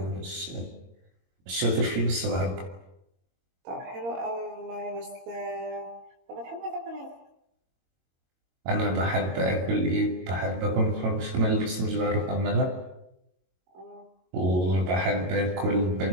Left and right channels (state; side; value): late; left; 22 ms